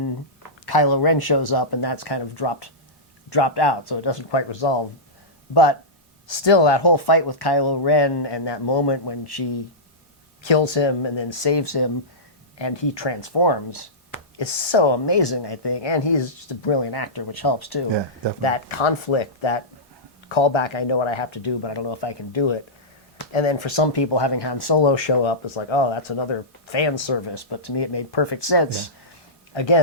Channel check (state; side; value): normal; both; correlation -0.15